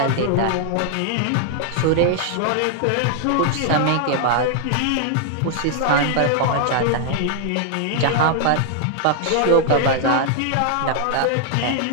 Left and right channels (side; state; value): both; different; correlation 0.00